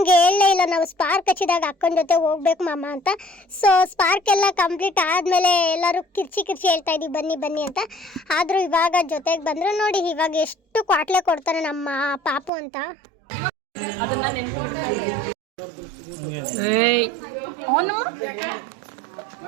ಹೇಳಲೇ ಇಲ್ಲ, ನಾವು ಸ್ಪಾರ್ಕ್ ಹಚ್ಚಿದಾಗ ಅಕ್ಕನ ಜೊತೆ ಹೋಗ್ಬೇಕು ಮಾಮ ಅಂತ. ಸೊ ಸ್ಪಾರ್ಕ್ ಎಲ್ಲ ಕಂಪ್ಲೀಟ್ ಆದಮೇಲೆ ಎಲ್ಲರೂ ಕಿರ್ಚಿ ಹೇಳ್ತಾ ಇದ್ದೀವಿ ಬನ್ನಿ ಬನ್ನಿ ಅಂತ. ಆದರೂ ಇವಾಗ ಜೊತೆಗೆ ಬಂದರು. ನೋಡಿ ಇವಾಗ ಎಷ್ಟು ಕ್ವಾಟ್ಲೆ ಕೊಡ್ತಾನೆ ನಮ್ಮ ಪಾಪು ಅಂತ.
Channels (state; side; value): drops out; left; at 12.5 s